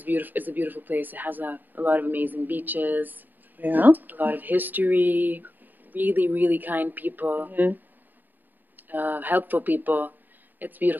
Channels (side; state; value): left; late; 0.089 ms